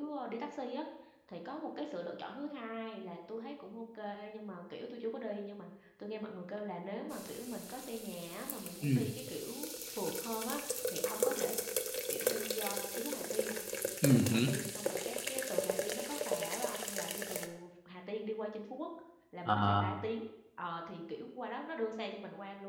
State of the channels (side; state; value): both; identical; correlation 1.00